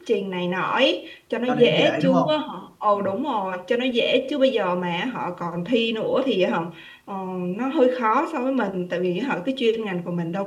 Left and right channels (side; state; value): both; identical; correlation 1.00